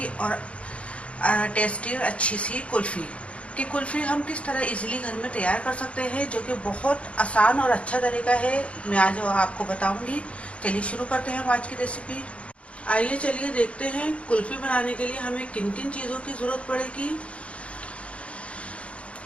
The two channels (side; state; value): right; late; 0.062 ms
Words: और टेस्टी और अच्छी सी कुल्फ़ी। कि कुल्फ़ी हम किस तरह इजीली घर में तैयार कर सकते हैं, जो कि बहुत आसान और अच्छा तरीका है, मैं आज आपको बताऊंगी। चलिए शुरू करते हैं हम आज की रेसिपी। आइए चलिए देखते हैं कुल्फ़ी बनाने के लिए हमें किन किन चीज़ों की ज़रूरत पड़ेगी।